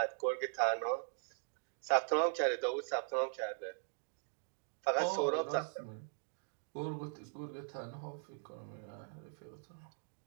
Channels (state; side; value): silent; left; digital silence